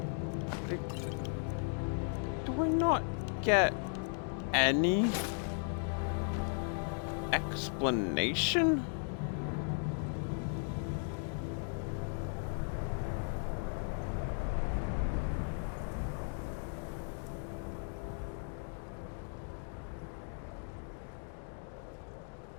Do I not get any explanation?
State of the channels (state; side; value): silent; right; 54 dB below the other